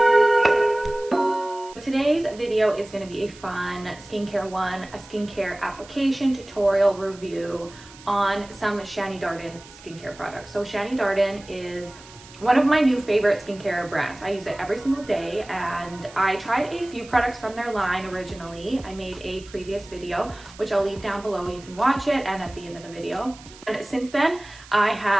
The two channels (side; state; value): right; noise; hiss, 20 dB below the sound